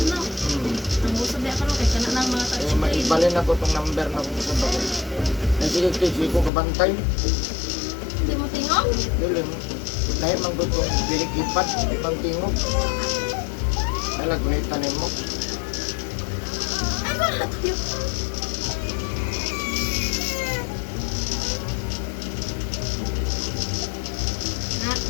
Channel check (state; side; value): drops out; right; at 6.5 s